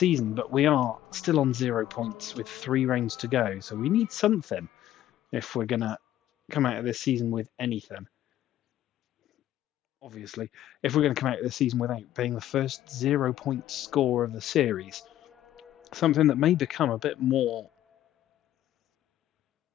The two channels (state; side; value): quieter; right; 12.7 dB